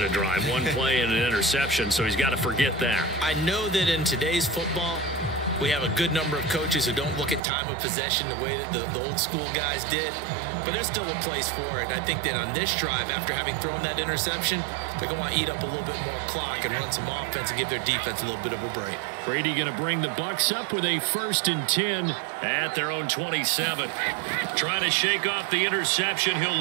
drive. 1 play and an interception, so he's got to forget that. I know that in today's football, we have a good number of coaches who don't look at time of possession the way that the old school guys did. But there's still a place for it. And I think that on this drive, after having thrown that interception, they're going to want to eat up a little bit more clock and run some offense and give their defense a little bit of a break. Brady going to bring the Bucs up with a 1st and 10 at their own 27. Trying to shake off the interception. He'll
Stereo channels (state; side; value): drops out; left; at 7.4 s